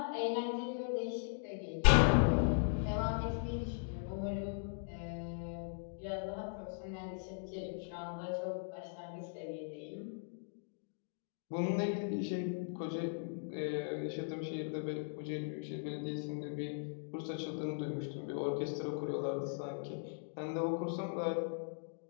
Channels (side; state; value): right; silent; digital silence